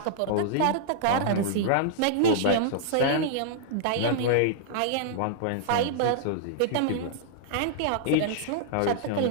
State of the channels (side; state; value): both; different; correlation -0.02